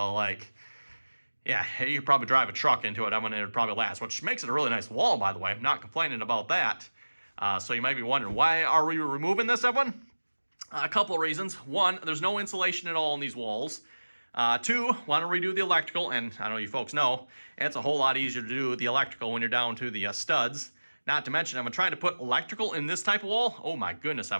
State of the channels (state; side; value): inverted; both; correlation -1.00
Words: you could probably drive a truck into it. It would probably last, which makes it a really nice wall, by the way. I'm not complaining about that. So you might be wondering, why are we removing this, everyone? A couple of reasons. One, there's no insulation at all in these walls. Two, want to redo the electrical, and I know you folks know, it's a whole lot easier to do the electrical when you're down to the studs. Not to mention, I'm trying to put electrical in this type of wall. Oh my goodness,